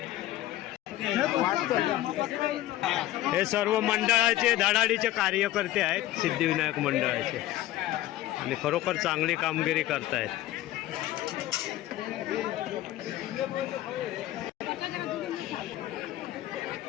हे सर्व मंडळाचे धडाडीचे कार्यकर्ते आहेत सिद्धिविनायक मंडळाचे आणि खरोखर चांगली कामगिरी करतायत।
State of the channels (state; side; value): quieter; right; 15.0 dB